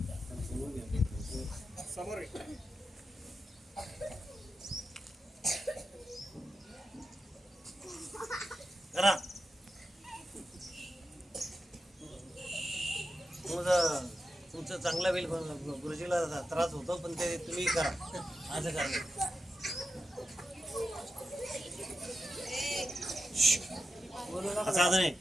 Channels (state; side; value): normal; both; correlation 0.89